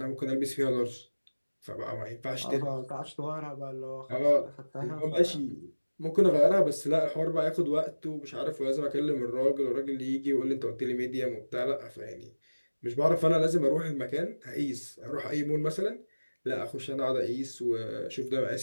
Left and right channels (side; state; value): both; inverted; correlation -1.00